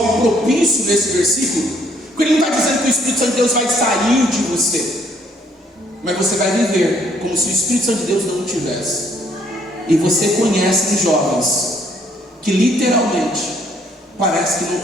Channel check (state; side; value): normal; both; correlation 0.65